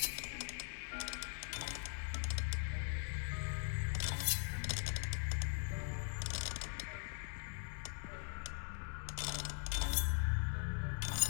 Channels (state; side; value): silent; right; 50 dB below the other